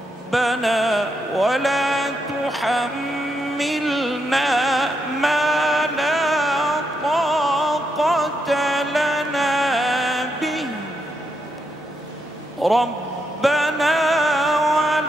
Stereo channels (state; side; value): normal; both; correlation 0.81